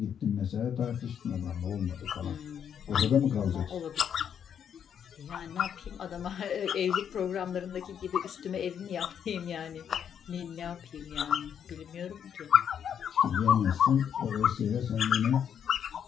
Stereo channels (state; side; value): quieter; right; 8.4 dB